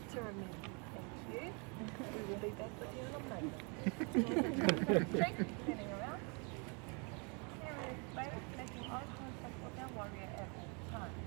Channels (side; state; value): left; quieter; 34.0 dB